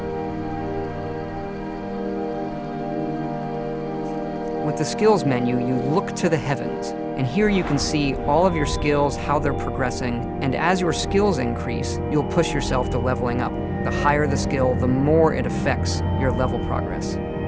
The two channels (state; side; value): identical; both; correlation 1.00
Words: With the skills menu, you look to the heavens, and here you can see all of your skills, how they're progressing, and as your skills increase, you'll push yourself to leveling up. The higher the skill, the more it affects your level progress.